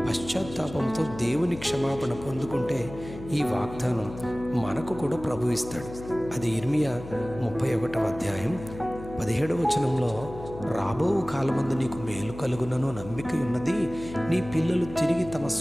పశ్చాత్తాపంతో దేవుని క్షమాపణ పొందుకుంటే ఈ వాగ్దానం మనకు కూడా ప్రభు ఇస్తాడు. అది ఇర్మియా 31వ అధ్యాయం 17వ వచనంలో, రాబో కాలమందు నీకు మేలు కలుగునను నమ్మిక ఉన్నది, నీ పిల్లలు తిరిగి తమ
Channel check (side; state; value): left; noise; hum, 13 dB below the sound